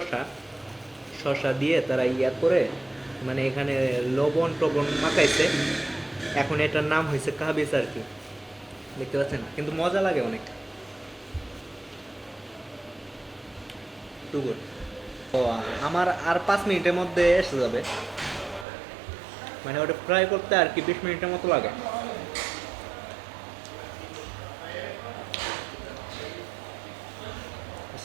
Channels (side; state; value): left; drops out; at 18.7 s